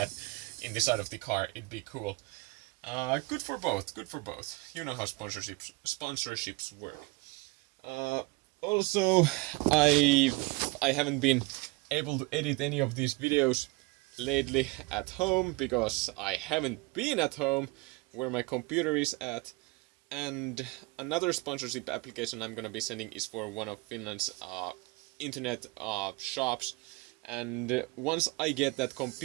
in the side of the car. It'd be cool. Good for both. You know how sponsorships work. Also, I haven't been able to edit any of these videos lately at home because I haven't been at home where my computer is at. And another sponsorship application I'm gonna be sending is for one of Finland's internet shops, and once I get that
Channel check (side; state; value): left; quieter; 24.4 dB